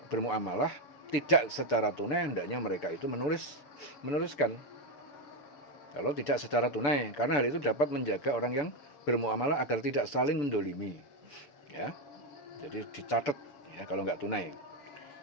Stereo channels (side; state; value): right; late; 6.9 ms